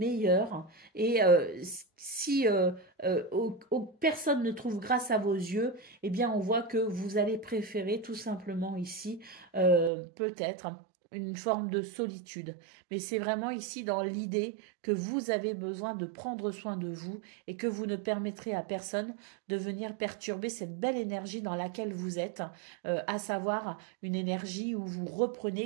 Et si personne ne trouve grâce à vos yeux, eh bien on voit que vous allez préférer tout simplement ici peut-être une forme de solitude. Mais c'est vraiment ici dans l'idée que vous avez besoin de prendre soin de vous et que vous ne permettrez à personne de venir perturber cette belle énergie dans laquelle vous êtes, à savoir une énergie où vous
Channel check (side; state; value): left; drops out; at 9.9 s